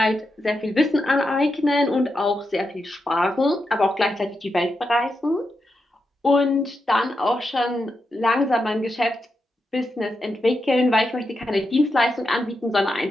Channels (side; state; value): both; normal; correlation 0.86